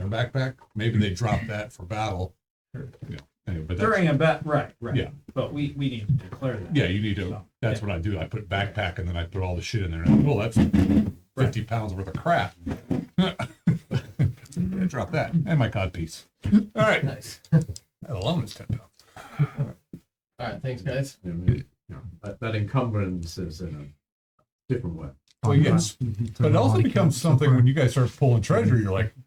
backpack. Maybe they drop that for battle. Sure. Yeah. Anyway, but that's, During a bet, right. Yeah. But we need to declare that. yeah, you need to. So, That's what I do. I put backpack and then I put all the shit in there. And, well, that's 50 pounds worth of crap. Yeah, drop that and my codpiece. All right, Nice. that alone is 10 pounds. All right. Thanks, guys. That encumbrance is in a different way. Well, yes, but it also becomes something when you guys start pulling treasure. You're like,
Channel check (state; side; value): identical; both; correlation 1.00